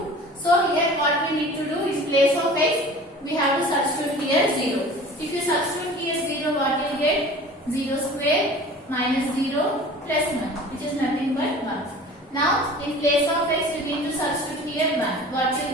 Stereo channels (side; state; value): both; normal; correlation 0.42